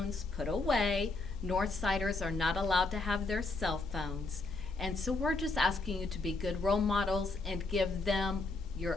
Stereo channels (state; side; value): quieter; right; 3.4 dB